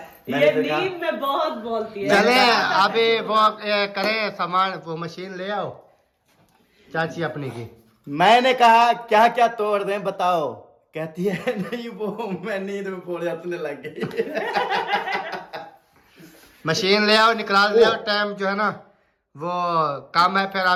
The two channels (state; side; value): identical; both; correlation 1.00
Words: ये नींद में बहुत बोलती है। चले अभी वो करें सामान, वो मशीन ले आओ चाची अपनी की। मैंने कहा क्या क्या तोड़ दें बताओ, कहती है नहीं वो मैं नींद में पड़ जाने लग गई। मशीन ले आओ, निकाल ले आओ, टाइम जो है ना वो काम है, फिर